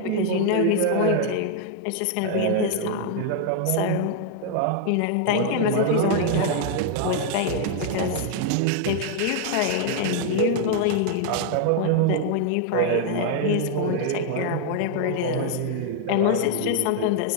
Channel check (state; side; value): different; both; correlation 0.00